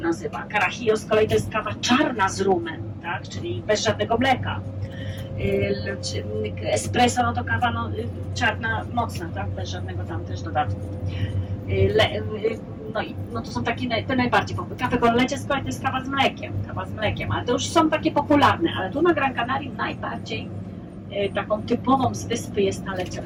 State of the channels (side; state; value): both; identical; correlation 1.00